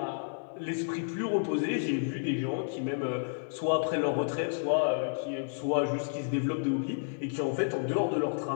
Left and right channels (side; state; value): right; silent; digital silence